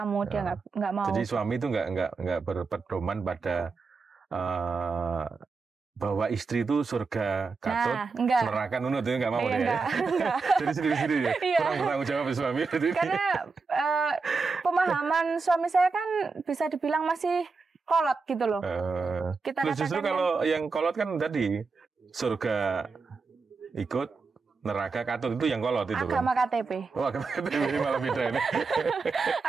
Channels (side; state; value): left; quieter; 4.5 dB